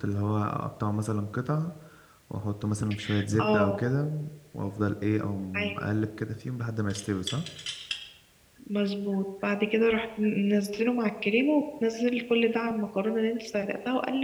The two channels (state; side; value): identical; both; correlation 1.00